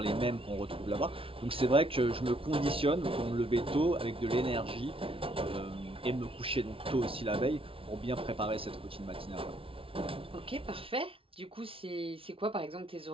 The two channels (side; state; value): left; late; 0.26 ms